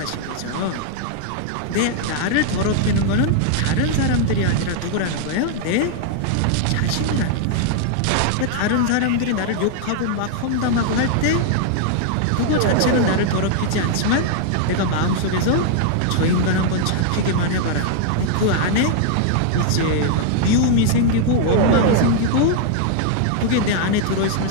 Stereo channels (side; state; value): both; different; correlation 0.00